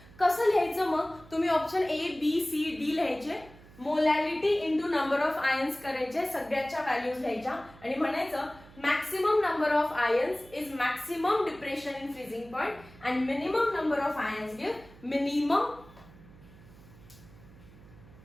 कसं लिहायचं मग? तुम्ही option A, B, C, D लिहायचे. Molarity into number of ions करायचे, सगळ्याच्या व्हॅल्यूज लिहायच्या आणि म्हणायचं maximum number of ions is maximum depression in freezing point and minimum number of ions give minimum.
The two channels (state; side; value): noise; right; hum, 22 dB below the sound